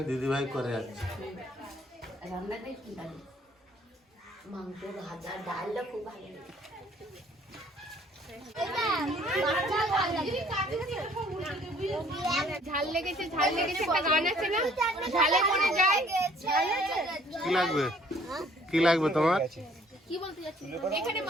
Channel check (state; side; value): normal; both; correlation 0.59